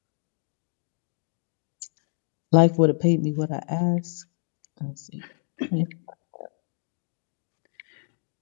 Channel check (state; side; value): silent; right; digital silence